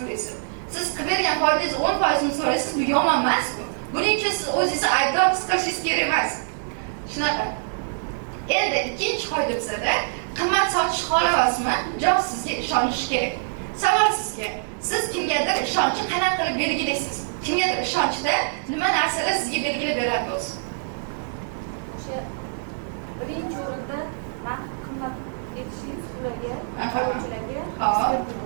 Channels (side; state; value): left; silent; digital silence